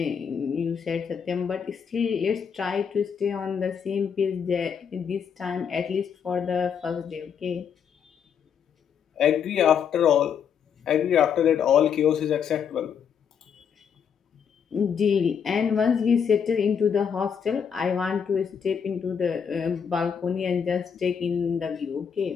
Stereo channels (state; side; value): quieter; right; 7.3 dB